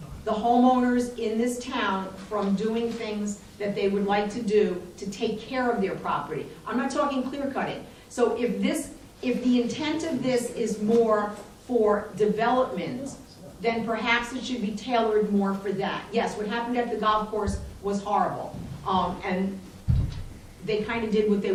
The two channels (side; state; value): both; identical; correlation 1.00